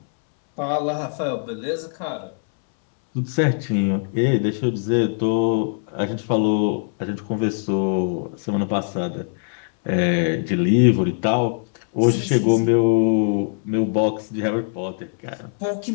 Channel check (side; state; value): right; silent; 64 dB below the other